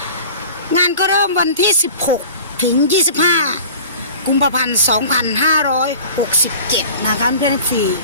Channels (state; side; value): inverted; both; correlation -0.41